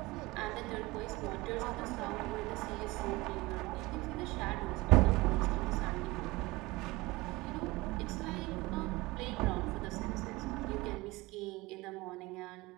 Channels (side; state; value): left; quieter; 21.5 dB